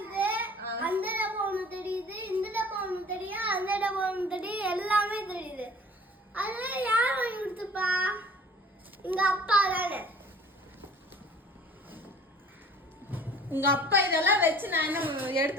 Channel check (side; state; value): both; normal; correlation 0.49